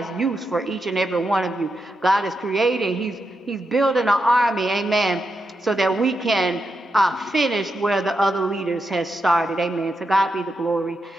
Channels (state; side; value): normal; both; correlation 0.85